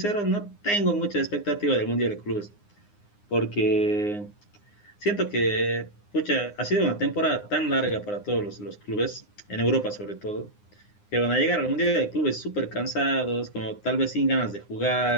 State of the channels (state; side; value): late; right; 9.7 ms